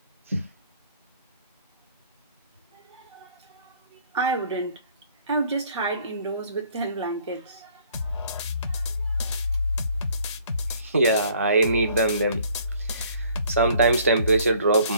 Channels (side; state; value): both; inverted; correlation -0.59